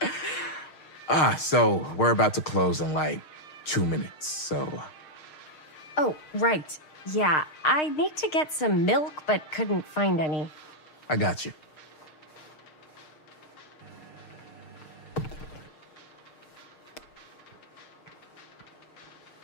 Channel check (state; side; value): late; right; 6.5 ms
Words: So we're about to close in like 2 minutes, so... Oh, right. Yeah, I need to get some milk, but couldn't find any. I got you.